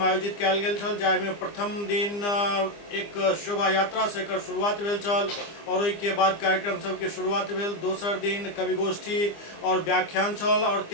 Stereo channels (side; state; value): right; late; 25 ms